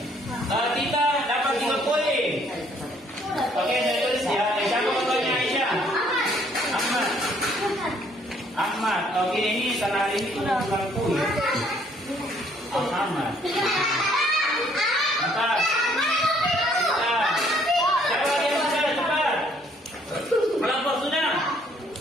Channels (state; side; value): normal; both; correlation 0.64